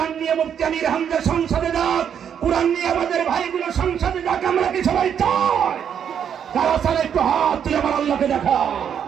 নিয়ে মুফতি আমির হামজা সংসদে যাক, কোরআন নিয়ে আমাদের ভাইগুলো সংসদে যাক। আমরা কি সবাই চাই? যারা চাই একটু হাত তুলে আমার আল্লাহকে দেখা।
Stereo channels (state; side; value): quieter; left; 8.4 dB